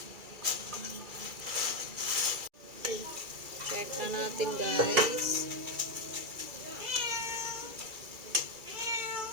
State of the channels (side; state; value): left; late; 2.3 ms